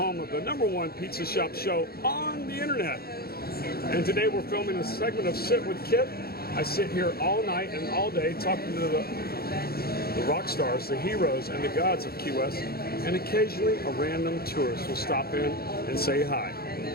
of the #1 pizza shop show on the internet. And today we're filming a segment of Sit with Kit. I sit here all night and all day talking to the rock stars, the heroes, and the gods of Key West. And occasionally a random tourist will stop in and say hi.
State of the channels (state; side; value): late; right; 0.45 ms